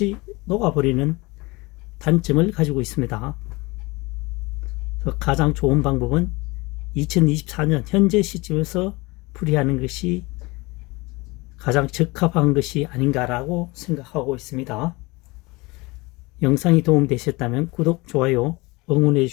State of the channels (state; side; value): quieter; right; 23.8 dB